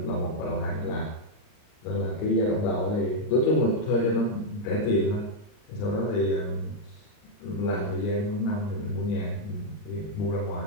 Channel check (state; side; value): late; right; 39 ms